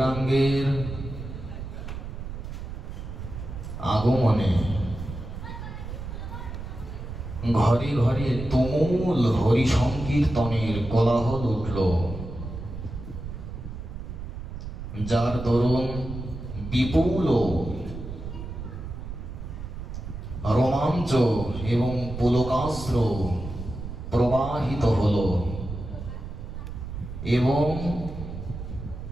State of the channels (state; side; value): noise; right; rumble, 8 dB below the sound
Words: আগমনে ঘরে ঘরে তুমুল হরি সংকীর্তনের কোলাহল উঠল, যার দরুন বিপুল রোমাঞ্চ এবং পুলকাস্ত্র প্রবাহিত হল এবং